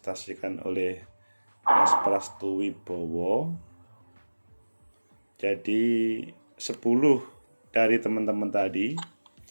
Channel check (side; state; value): both; inverted; correlation -1.00